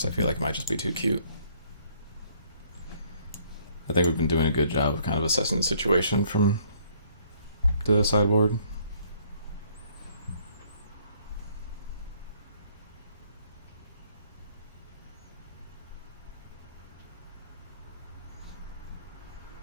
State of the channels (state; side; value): inverted; both; correlation -0.63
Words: I feel like it might just be too cute. I think we've been doing a good job of kind of assessing the situation from the sideboard.